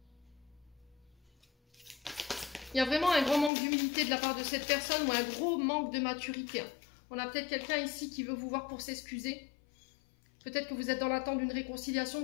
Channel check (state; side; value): drops out; right; at 3.5 s